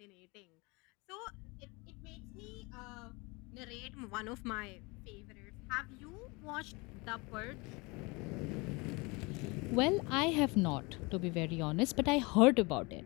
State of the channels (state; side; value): quieter; right; 26.6 dB